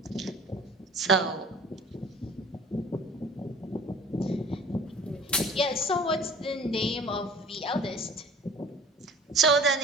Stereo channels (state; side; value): normal; both; correlation 0.46